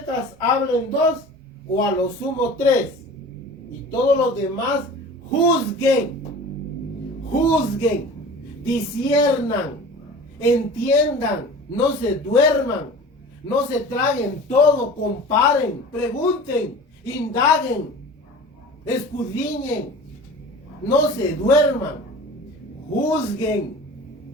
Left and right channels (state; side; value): normal; both; correlation 0.39